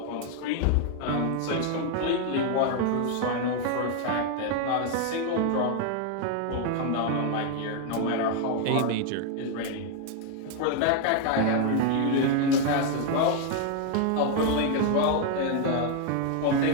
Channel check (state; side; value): different; both; correlation 0.00